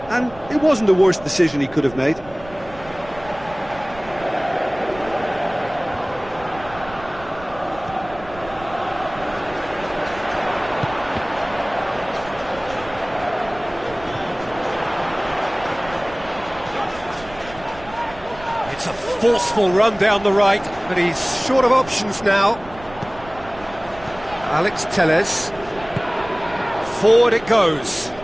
and it wasn't the worst decision he could have made. It's a forceful run down the right, but he's short of options now. Alex Telles. Forward it goes.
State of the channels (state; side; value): noise; right; rumble, 18 dB below the sound